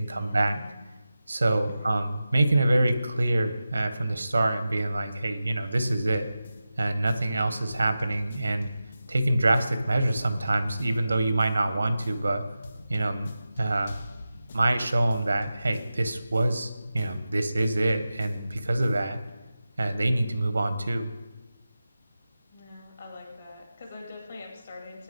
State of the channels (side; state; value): both; inverted; correlation -0.93